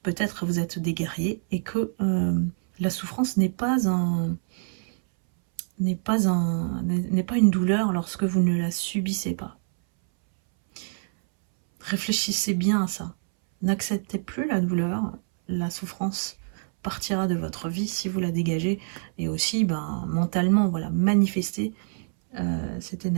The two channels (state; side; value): silent; left; 61 dB below the other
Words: peut-être vous êtes des guerriers et que la souffrance n'est pas une douleur lorsque vous ne la subissez pas. Réfléchissez bien à ça. N'acceptez plus la douleur, la souffrance partira de votre vie si vous la dégagez, et aussi mentalement, voilà, manifestez cette